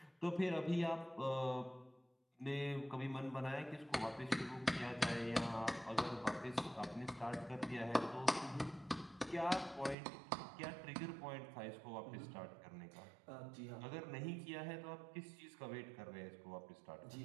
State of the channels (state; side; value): drops out; left; at 10.0 s